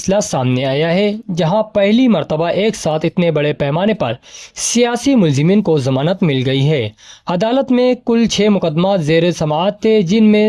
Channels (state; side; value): identical; both; correlation 1.00